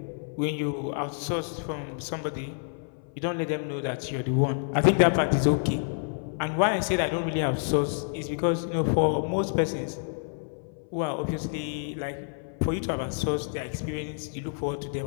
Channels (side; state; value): right; silent; 59 dB below the other